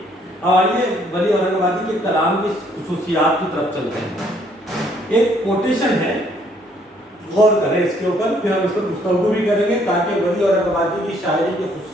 اب آئیے ولی اورنگ آبادی کے کلام کی خصوصیات کی طرف چلتے ہیں۔ ایک کوٹیشن ہے، غور کریں اس کے اوپر، پھر ہم اس پر گفتگو بھی کریں گے تاکہ ولی اورنگ آبادی کی شاعری کی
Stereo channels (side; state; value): both; normal; correlation 0.65